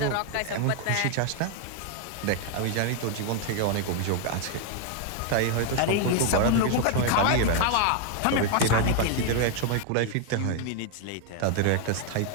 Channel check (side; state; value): both; different; correlation 0.00